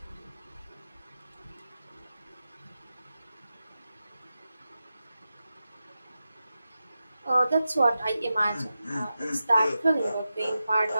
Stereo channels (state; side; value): inverted; both; correlation -0.92